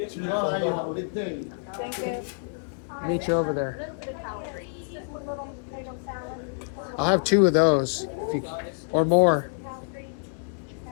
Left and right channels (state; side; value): silent; right; digital silence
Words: Thank you. Meet you over there. I'll have 2 of those, if you, or more.